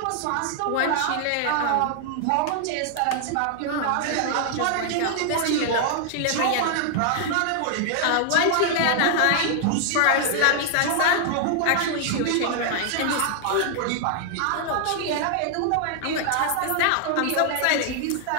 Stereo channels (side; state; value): both; different; correlation 0.00